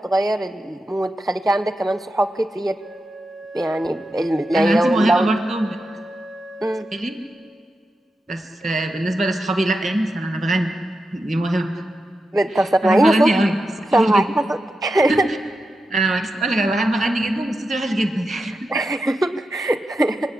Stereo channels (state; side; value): normal; both; correlation 0.89